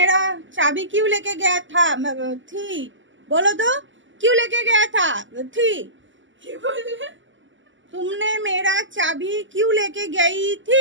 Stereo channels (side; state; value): left; late; 0.55 ms